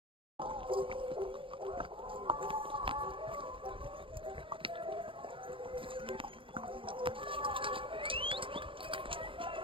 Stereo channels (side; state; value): left; late; 0.25 ms